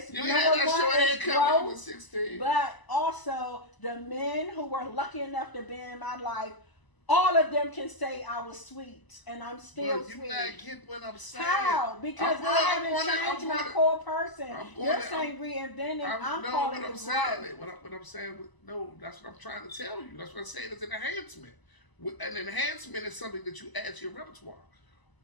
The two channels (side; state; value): right; late; 1.0 ms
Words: you ain't had that short haircut when you were 16. But also, the men who were lucky enough to be in my life, all of them can say I was sweet, and I'm still sweet. You not get what I'm saying. How? Because I haven't changed my core person. You're saying reinventing. I'm calling it growth. What I'm saying, no, that's what I'm trying to tell you. That's what I'm saying. It's an enhancement. An enhancement is something that you add to your repertoire.